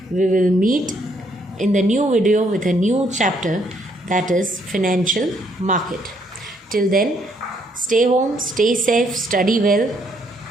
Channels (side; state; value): both; normal; correlation 0.70